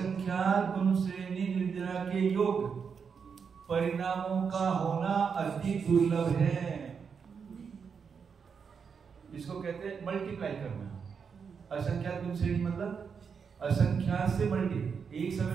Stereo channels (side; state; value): left; quieter; 6.2 dB